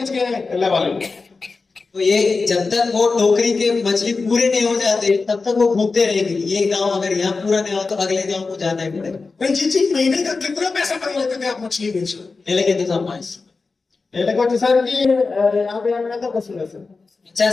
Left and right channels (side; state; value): right; quieter; 4.1 dB